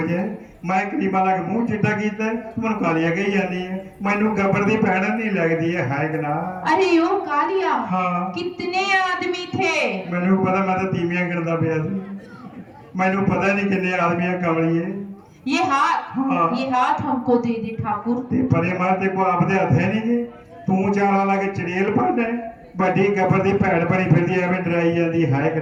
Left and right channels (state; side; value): identical; both; correlation 1.00